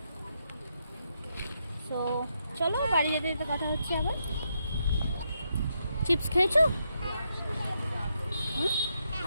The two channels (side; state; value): both; inverted; correlation -0.80